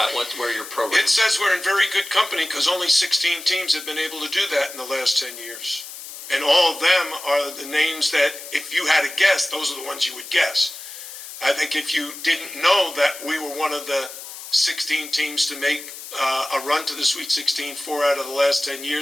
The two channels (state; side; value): noise; left; hiss, 12 dB below the sound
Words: where your program. It says we're in very good company because only 16 teams have been able to do that in the last 10 years. And all of them are the names that, if you had to guess, those are the ones you would guess. I think if you didn't know that we were one of the 16 teams to make a run to the Sweet 16 4 out of the last 10